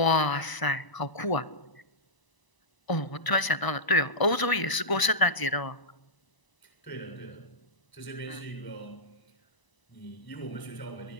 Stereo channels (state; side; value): late; right; 1.0 ms